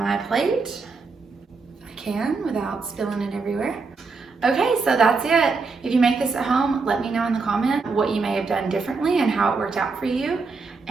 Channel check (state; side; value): quieter; left; 4.4 dB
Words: plate if I can without spilling it everywhere. Okay, so that's it. If you make this at home, let me know in the comment what you may have done differently and how it worked out for you,